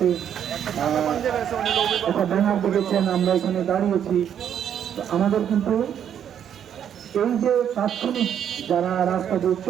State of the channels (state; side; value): quieter; left; 9.2 dB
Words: একটা ব্যানার দেখেছেন, আমরা এখানে দাঁড়িয়েছি। আমাদের কিন্তু এই যে তাৎক্ষণিক যারা রাস্তা দিয়ে